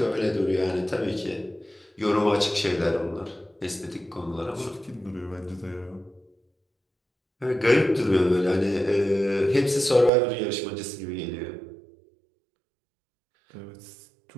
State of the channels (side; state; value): left; drops out; at 10.1 s